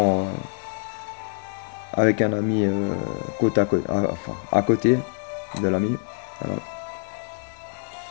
avec un ami côte à côte, enfin, à côté de l'ami. Voilà.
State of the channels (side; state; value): right; quieter; 37.6 dB